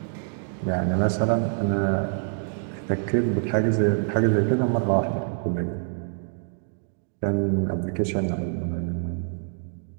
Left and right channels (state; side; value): silent; left; 61 dB below the other